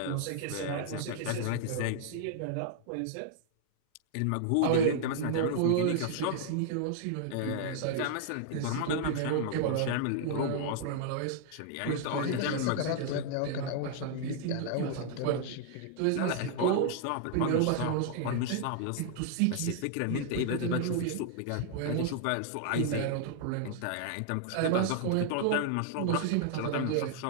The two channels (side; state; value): both; different; correlation -0.01